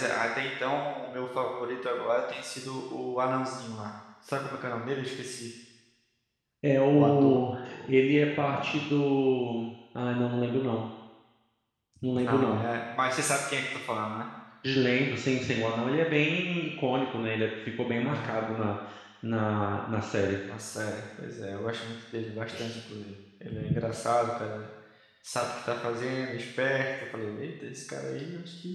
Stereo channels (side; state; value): both; identical; correlation 1.00